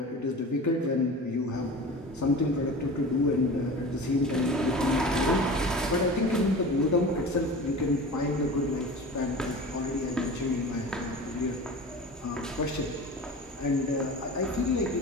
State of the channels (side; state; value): both; normal; correlation 0.35